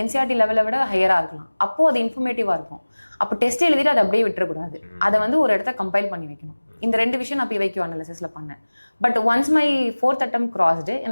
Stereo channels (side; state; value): both; inverted; correlation -1.00